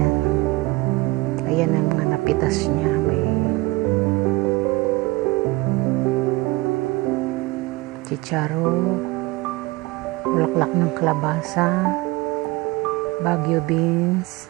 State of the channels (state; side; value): quieter; left; 21.8 dB